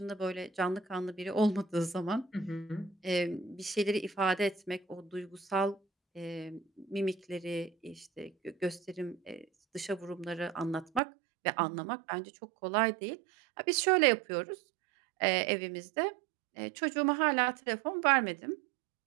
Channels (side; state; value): left; drops out; at 11.0 s